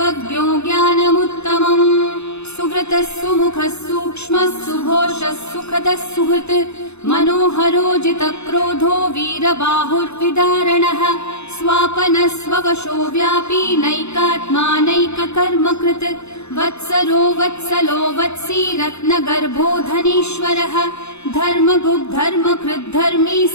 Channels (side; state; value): right; late; 0.81 ms